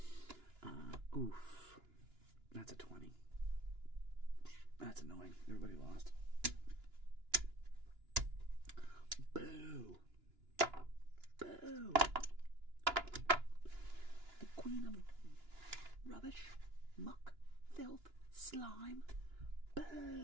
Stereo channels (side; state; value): left; late; 2.9 ms